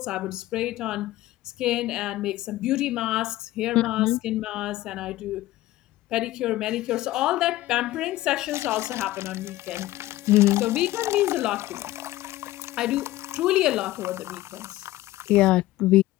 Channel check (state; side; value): quieter; right; 16.4 dB